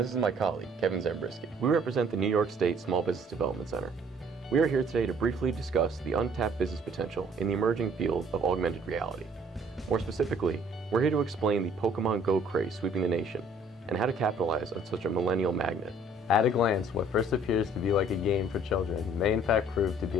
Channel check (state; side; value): normal; both; correlation 0.58